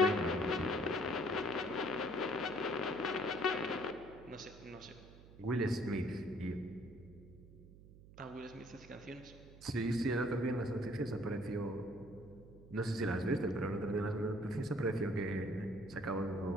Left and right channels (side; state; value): right; noise; hum, 19 dB below the sound